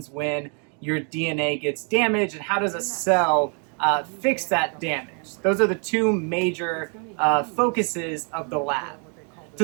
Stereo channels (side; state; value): left; quieter; 38.9 dB